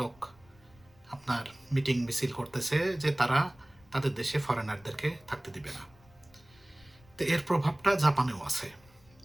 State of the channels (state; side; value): noise; left; rumble, 28 dB below the sound